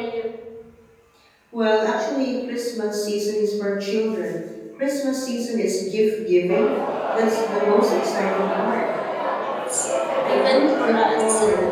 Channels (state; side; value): identical; both; correlation 1.00